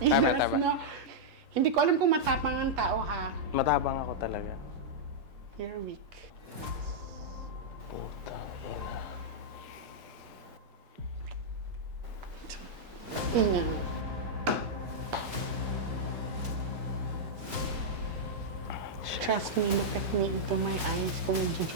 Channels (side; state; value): left; late; 5.4 ms